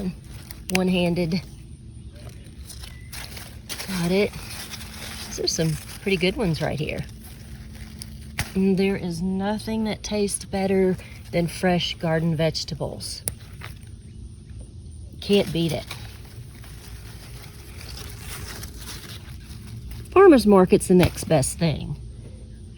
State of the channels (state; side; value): identical; both; correlation 1.00